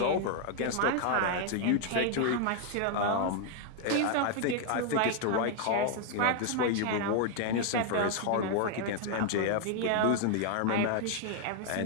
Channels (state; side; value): different; both; correlation 0.00